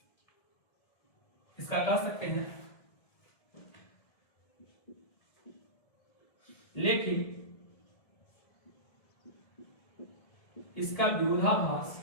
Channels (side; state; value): right; late; 1.7 ms